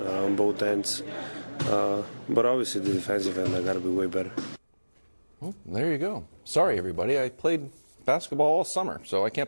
on both ends. But obviously the defensive end, I got to be way better. Well, there you go. Sorry, everybody. I played basketball all summer, so I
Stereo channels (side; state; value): both; inverted; correlation -1.00